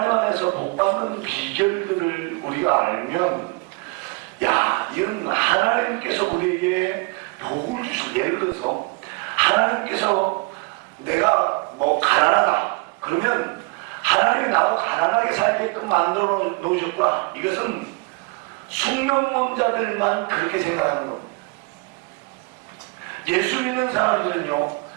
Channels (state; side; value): quieter; left; 30.0 dB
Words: 안에서 복받는 비결들을 우리가 알면, 야, 이건 하나님께서 우리에게 복을 주실, 예를 들어서 하나님께서 내가 뭐 가난하다 그러면 하나님이 나하고 가난하게 살게끔 만들어 놓으셨구나, 이것은 숙명론자들만 그렇게 생각하는 겁니다. 예수 믿는 사람들은요